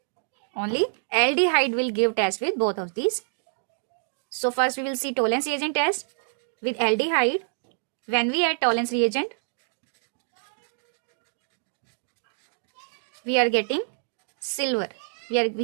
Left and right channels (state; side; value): silent; left; digital silence